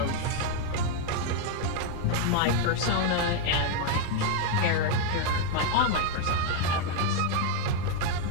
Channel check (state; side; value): different; both; correlation 0.01